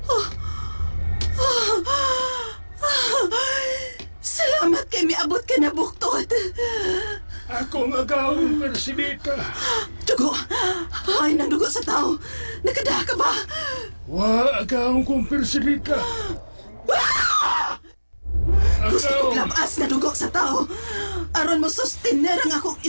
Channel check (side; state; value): both; inverted; correlation -1.00